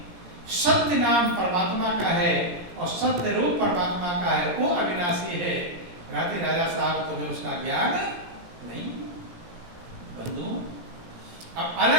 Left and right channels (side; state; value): left; late; 17 ms